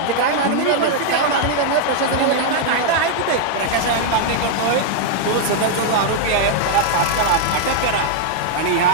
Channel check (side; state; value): both; different; correlation -0.01